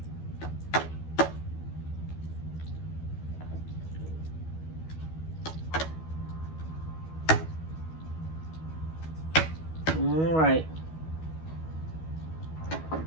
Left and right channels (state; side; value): late; right; 12 ms